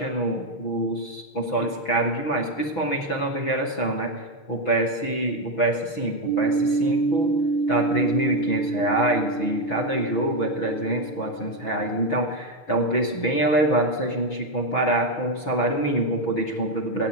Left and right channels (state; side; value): late; right; 6.1 ms